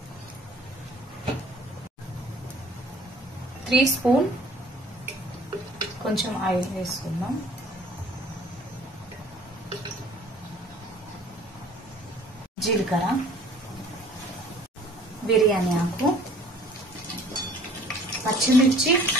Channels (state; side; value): normal; both; correlation 0.52